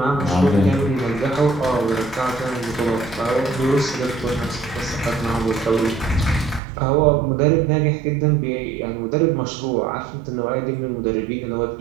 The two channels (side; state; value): left; drops out; at 6.6 s